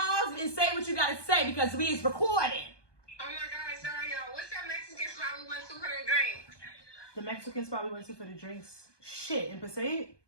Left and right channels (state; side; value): late; right; 1.2 ms